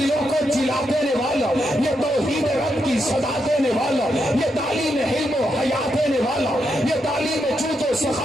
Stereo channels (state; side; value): normal; both; correlation 0.82